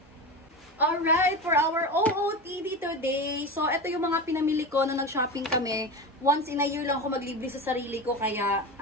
Alright, for our OOTD today. So, ito yung mga pinamili ko na nag-shopping kami. Once in a year lang ako maglibre sa sarili ko. Kaya,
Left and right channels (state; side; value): normal; both; correlation 0.24